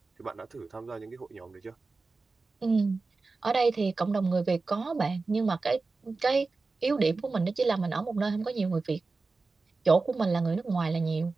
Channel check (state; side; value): quieter; left; 3.9 dB